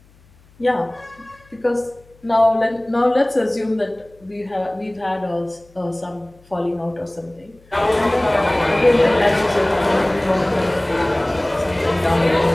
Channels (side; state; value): left; noise; hum, 29 dB below the sound